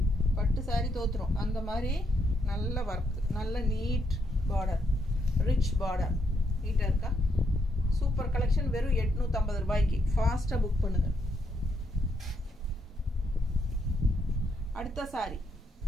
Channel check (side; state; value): both; normal; correlation 0.77